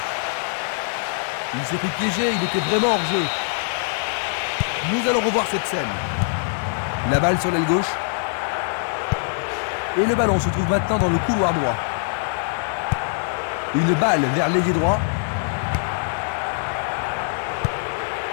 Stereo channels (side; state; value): right; silent; digital silence